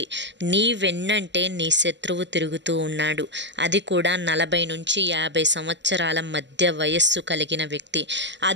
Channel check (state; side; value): late; left; 0.52 ms